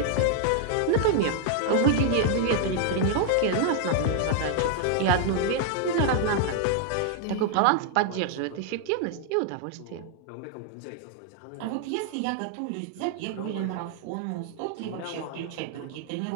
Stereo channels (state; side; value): different; both; correlation 0.00